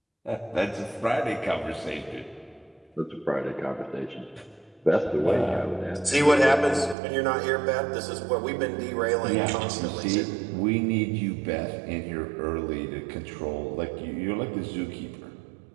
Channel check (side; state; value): left; drops out; at 7.0 s